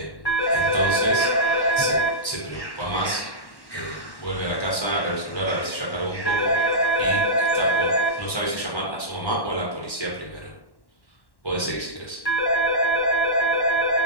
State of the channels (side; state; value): right; late; 1.1 ms